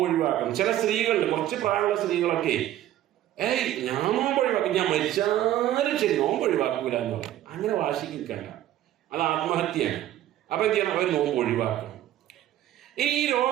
ഒഴിവാക്കണം. ചില സ്ത്രീകളിൽ, കുറച്ച് പ്രായമുള്ള സ്ത്രീകളൊക്കെ ഞാൻ നോമ്പ് ഒഴിവാക്കും, ഞാൻ മരിച്ചാലും ശരി നോമ്പ് ഒഴിവാക്കൂല എന്ന് പറയും. അങ്ങനെ വാശിക്ക് നിൽക്കണ്ട, അത് ആത്മഹത്യയാണ്. അപ്പൊ എന്ത് ചെയ്യണം? അവർ നോമ്പ് ഒഴിവാക്കണം. ഇനി ഈ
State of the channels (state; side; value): quieter; left; 12.9 dB